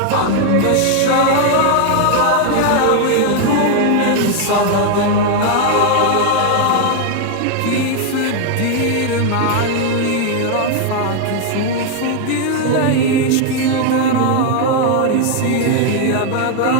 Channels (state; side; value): different; both; correlation 0.00